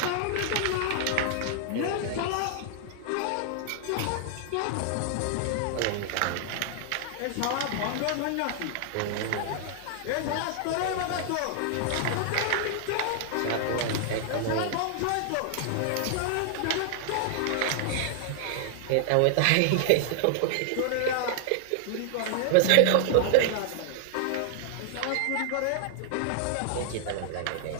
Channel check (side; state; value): both; different; correlation 0.00